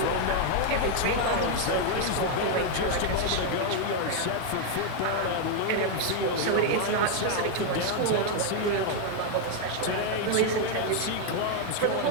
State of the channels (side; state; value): both; different; correlation 0.00